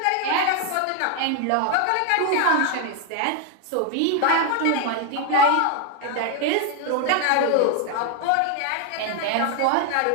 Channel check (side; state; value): both; different; correlation 0.01